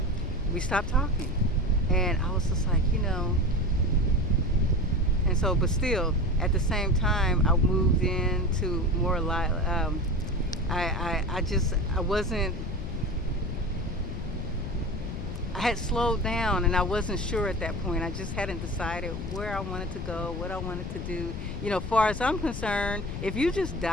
we stopped talking. And I was just like, and so, but still, at the same time, I moved into more I had slowed down, and I wasn't sure at that point. I just hadn't decided where I wanted to go, what I wanted to do. As far as I'm concerned, if you just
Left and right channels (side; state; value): left; noise; rumble, 6 dB below the sound